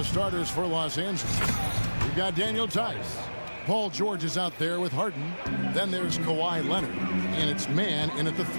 starters for Los Angeles. We've got Daniel Tice. Paul George is out there with Harden. Then there's Kawhi Leonard. And it's man in at the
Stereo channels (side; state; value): both; inverted; correlation -1.00